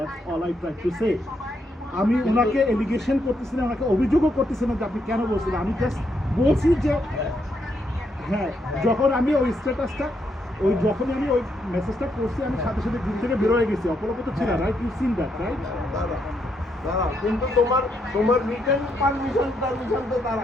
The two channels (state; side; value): normal; both; correlation 0.77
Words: all I try to say. আমি ওনাকে এলিগেশন করতেছি না, ওনাকে অভিযোগও করতেছি না যে আপনি কেন বলছেন। আমি জাস্ট বলছি যে হ্যাঁ, যখন আমি ওই স্ট্যাটাসটা যখনই আমি ওই মেসেজটা করছি, আমি সাথে সাথে গ্রুপ থেকে বেরোয় গেছি। অপরাপত ছিল, right? You seen that, right? দাঁড়াও, কিন্তু তোমার রিটার্ন পারমিশন তো তার